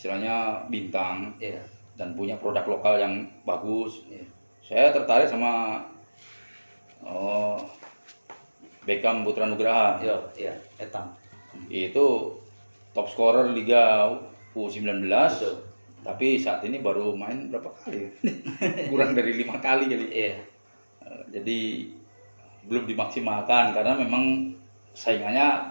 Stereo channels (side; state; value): both; inverted; correlation -1.00